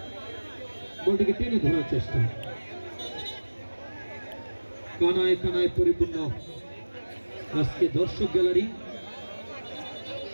বলটিকে টেনে ধরার চেষ্টা, কানায় কানায় পরিপূর্ণ আজকে দর্শক গ্যালারি।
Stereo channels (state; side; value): inverted; both; correlation -1.00